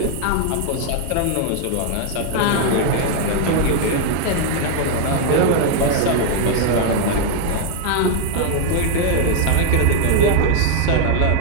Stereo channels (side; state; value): both; different; correlation 0.00